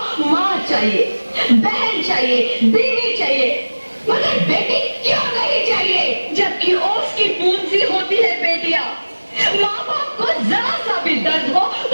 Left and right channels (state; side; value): inverted; both; correlation -1.00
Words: माँ चाहिए, बहन चाहिए, बीवी चाहिए, मगर बेटी क्यों नहीं चाहिए? जबकि ओस की पूंजी होती है बेटियां। माँ बाप को जरा सा भी दर्द हो